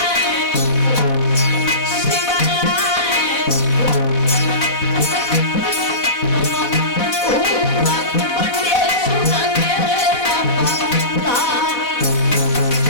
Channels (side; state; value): right; late; 4.1 ms